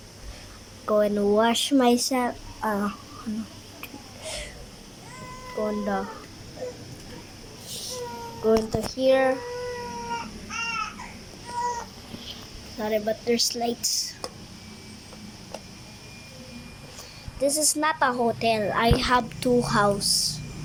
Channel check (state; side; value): identical; both; correlation 1.00